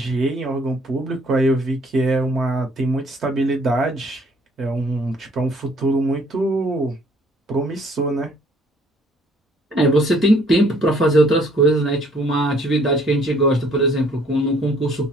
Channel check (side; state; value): both; normal; correlation 0.60